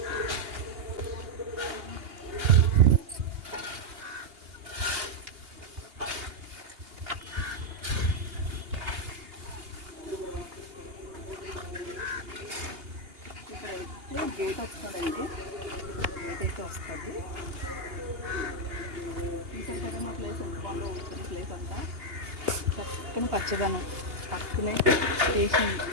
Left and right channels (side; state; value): left; late; 2.8 ms